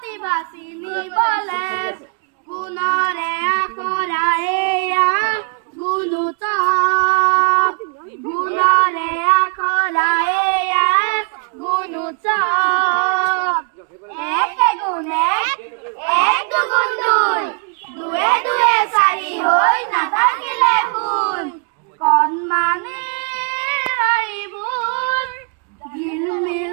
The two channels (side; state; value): left; quieter; 38.6 dB